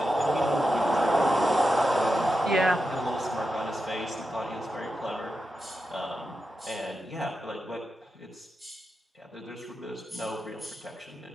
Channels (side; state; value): both; normal; correlation 0.89